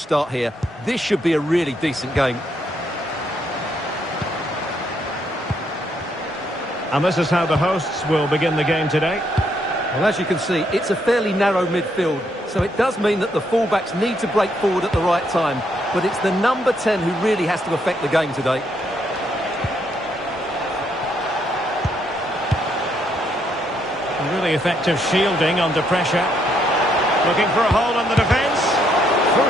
here. This should be a really decent game. And this is how the hosts will begin the game today. Well, as you can see, it's a fairly narrow midfield, so it does mean that the fullbacks need to break forward at the right time, but it's the number 10 who really has to affect the game today. Really effective shielding under pressure. Looking for a hole in the defence.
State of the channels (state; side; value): normal; both; correlation 0.74